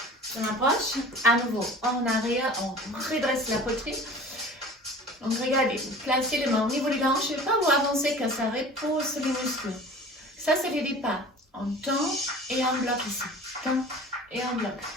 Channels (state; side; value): normal; both; correlation 0.42